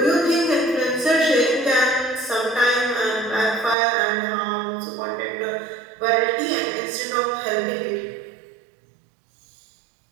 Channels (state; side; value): drops out; left; at 3.8 s